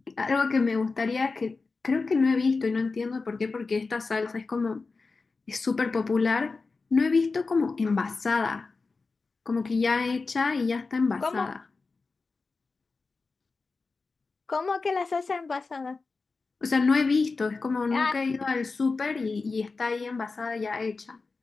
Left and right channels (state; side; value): quieter; right; 4.1 dB